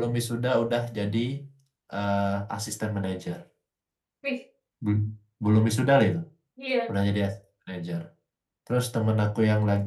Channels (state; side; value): identical; both; correlation 1.00